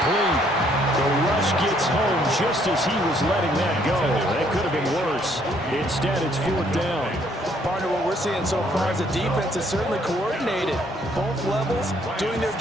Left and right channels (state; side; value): normal; both; correlation 0.66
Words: The rush gets home just as he was letting that go. That could have been worse. Instead, it's 4th down. Partner, what we're seeing so far is the defense is certainly coordinated. Both levels doing their